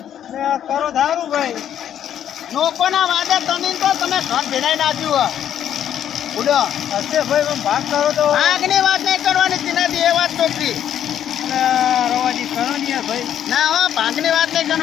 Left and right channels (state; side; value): quieter; right; 10.1 dB